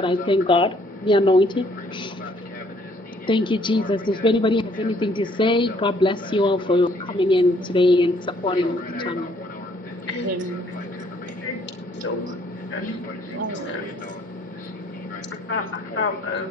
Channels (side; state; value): both; normal; correlation 0.63